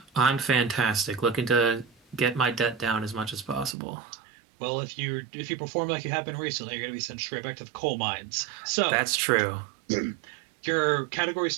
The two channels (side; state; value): left; drops out; at 3.8 s